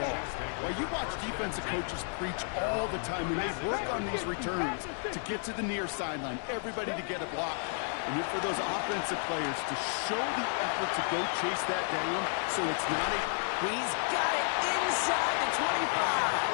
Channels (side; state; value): right; silent; 56 dB below the other